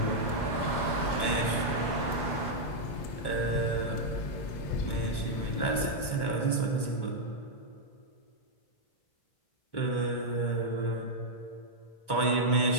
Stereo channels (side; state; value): right; late; 1.1 ms